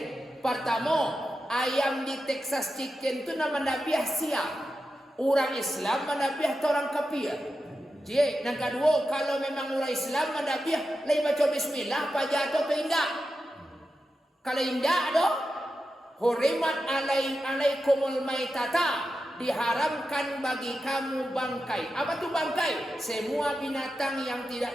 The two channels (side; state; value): both; normal; correlation 0.90